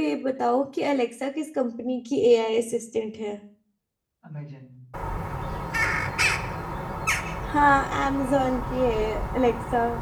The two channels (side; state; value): both; identical; correlation 1.00